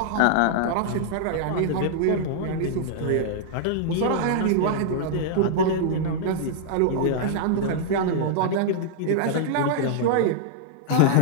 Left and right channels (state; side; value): different; both; correlation -0.01